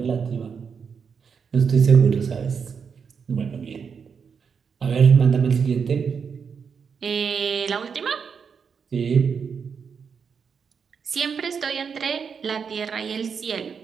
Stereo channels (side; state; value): left; quieter; 6.3 dB